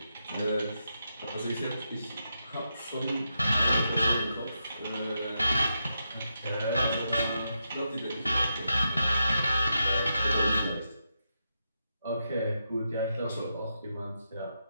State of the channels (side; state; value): both; inverted; correlation -0.85